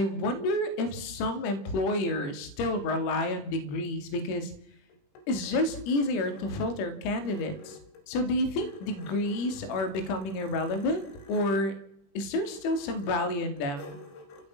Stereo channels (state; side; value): late; right; 21 ms